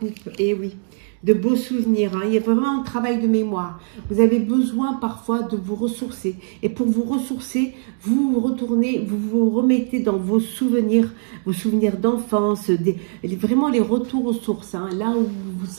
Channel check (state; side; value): silent; left; 65 dB below the other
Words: et oui, de beaux souvenirs. Hein. Il y a vraiment un travail de mémoire. Vous avez besoin parfois de vous ressourcer. Et pour vous ressourcer, vous vous retournez, vous vous remettez dans vos souvenirs d'enfance, vraiment les retours aux sources. Hein. Là où vous vous